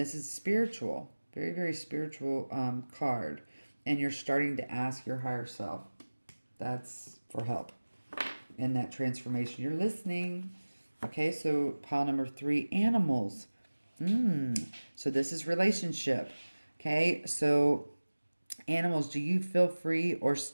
is spiritual, very, very spiritual card. And you're starting to ask your higher self. That's for help in that transformation. You're listening. Okay, so pile number 3, animals. So this is relationship. Okay, so animals, do you feel free or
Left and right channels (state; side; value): inverted; both; correlation -1.00